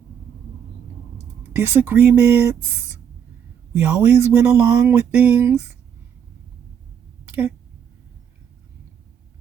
Disagreements. We always went along with things. Okay.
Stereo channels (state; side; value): quieter; left; 8.3 dB